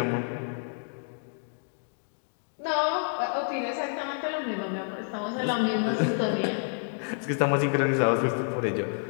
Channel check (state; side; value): silent; right; digital silence